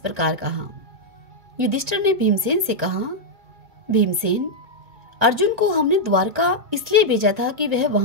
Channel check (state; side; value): late; left; 1.8 ms